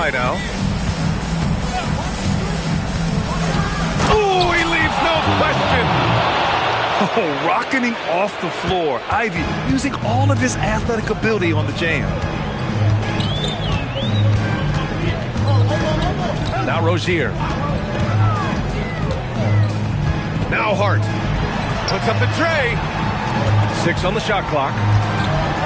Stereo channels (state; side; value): identical; both; correlation 1.00